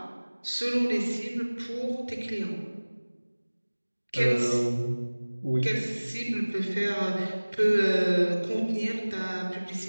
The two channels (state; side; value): inverted; both; correlation -1.00